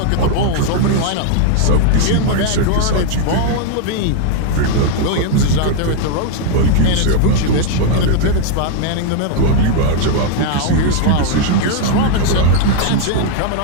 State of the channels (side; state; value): both; different; correlation 0.00